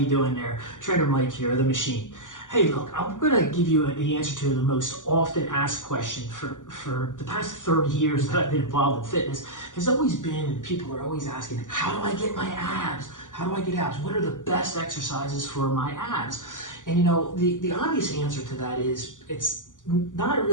doing there? Trainer Mike here, the machine. Hey look, I'm gonna give you the answer to the most often asked question for the past 30 years that I've been involved in fitness has always been, people are always asking, how do I get my abs? How do I get abs? What are the best exercises for my abs? And you know, the obvious answer to that is it's not a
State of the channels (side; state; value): right; late; 0.87 ms